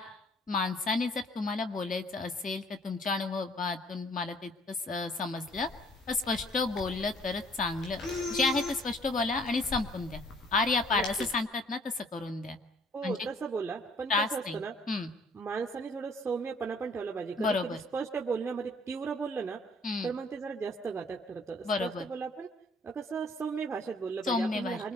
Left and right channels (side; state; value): both; normal; correlation 0.59